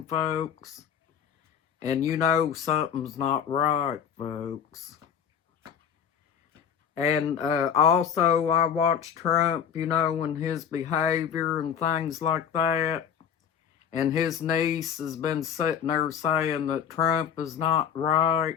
folks. And you know something's not right, folks. And also I watched Trump, you know, and his behavior and things like that. And his niece has been sitting there saying that Trump is not right.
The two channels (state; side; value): quieter; right; 8.2 dB